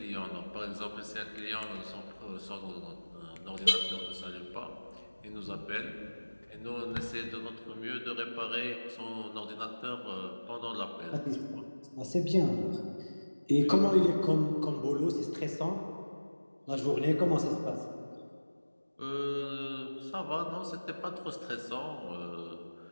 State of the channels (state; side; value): inverted; both; correlation -1.00